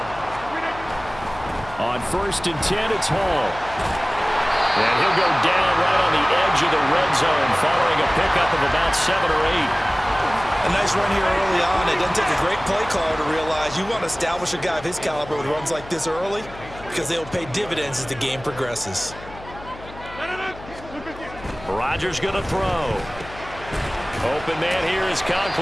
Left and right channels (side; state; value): left; noise; hum, 16 dB below the sound